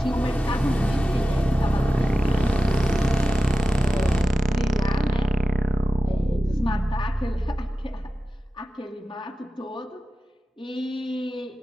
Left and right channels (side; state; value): both; normal; correlation 0.93